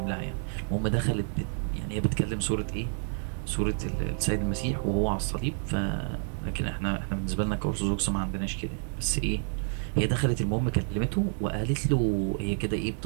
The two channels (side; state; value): left; silent; 58 dB below the other